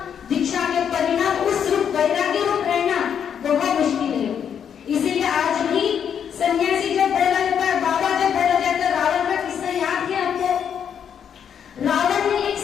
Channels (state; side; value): quieter; right; 8.1 dB